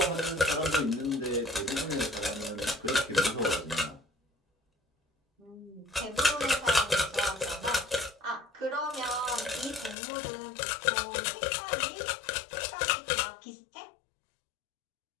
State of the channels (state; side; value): drops out; right; at 10.0 s